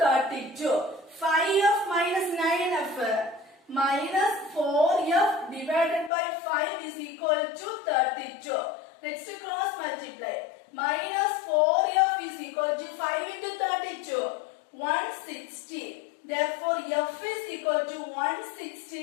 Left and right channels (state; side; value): drops out; right; at 6.1 s